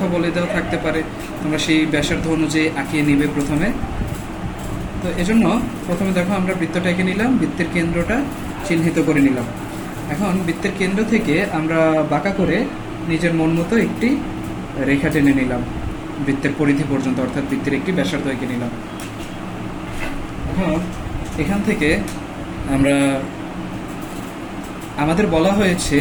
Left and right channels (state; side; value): identical; both; correlation 1.00